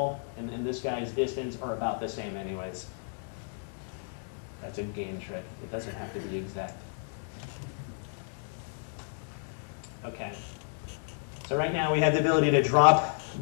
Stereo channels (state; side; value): silent; right; digital silence